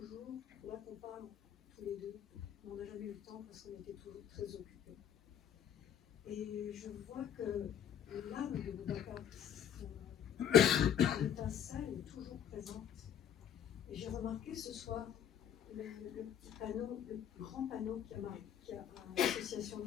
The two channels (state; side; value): quieter; right; 9.3 dB